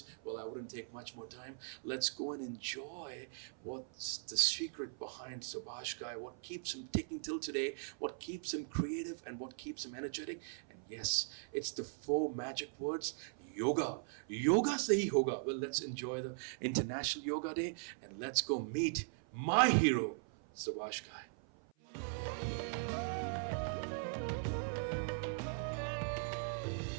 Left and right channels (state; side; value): silent; left; 51 dB below the other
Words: Well, I wouldn't take much more time. Let's go and enjoy what's the secret behind Subhash Ghai, what keeps him ticking till today, what keeps him creative, and what keeps him energetic. And yes, it's the four magic words: yoga. Yoga se hi hoga. Well, let's enjoy the International Yoga Day and let's go meet my hero, Subhash Ghai.